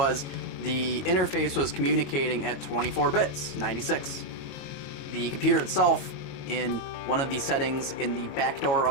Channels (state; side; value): late; right; 22 ms